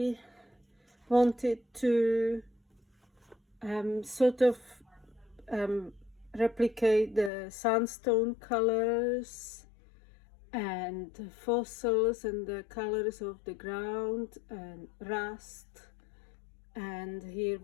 wanted to sort of replicate the sandstone colors and fossils and the colors of the ground and rust. And here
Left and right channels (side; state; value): right; drops out; at 7.3 s